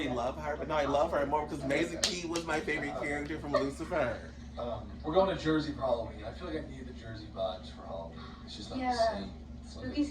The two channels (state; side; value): identical; both; correlation 1.00